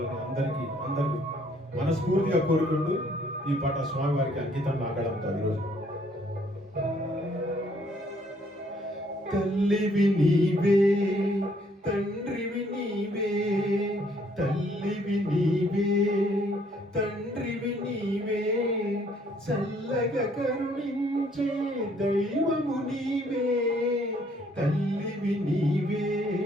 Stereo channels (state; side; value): normal; both; correlation 0.65